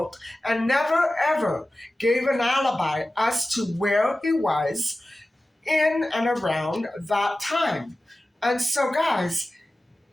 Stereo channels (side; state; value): both; normal; correlation 0.95